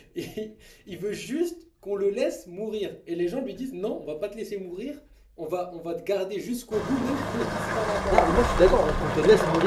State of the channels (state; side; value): identical; both; correlation 1.00